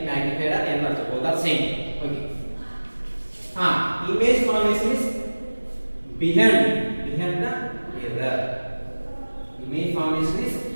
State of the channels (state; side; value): inverted; both; correlation -1.00